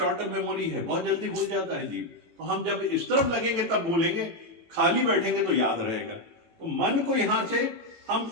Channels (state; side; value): late; left; 18 ms